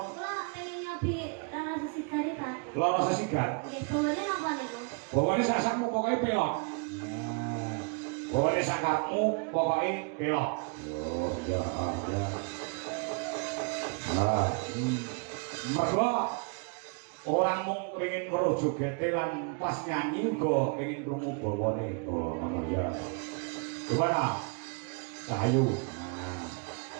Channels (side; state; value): left; quieter; 35.3 dB